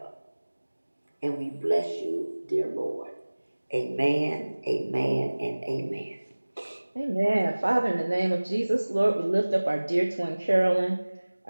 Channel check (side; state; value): both; inverted; correlation -1.00